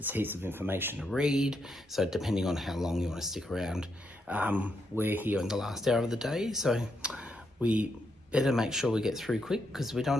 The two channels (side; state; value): both; normal; correlation 0.80